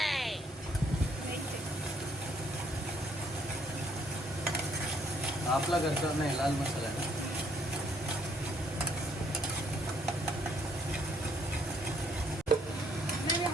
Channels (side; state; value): both; normal; correlation 0.67